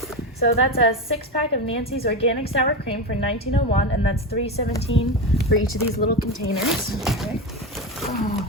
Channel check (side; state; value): both; normal; correlation 0.18